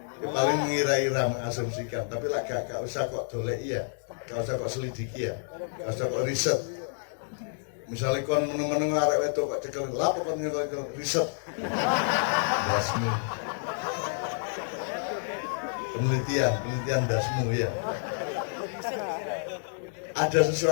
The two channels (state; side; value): silent; right; digital silence